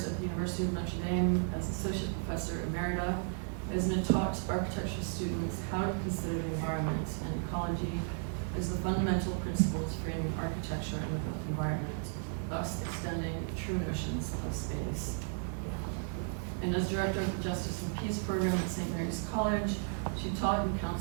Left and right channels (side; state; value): left; silent; 55 dB below the other